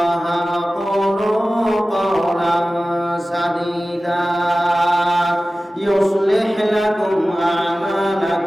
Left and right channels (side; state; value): both; normal; correlation 0.96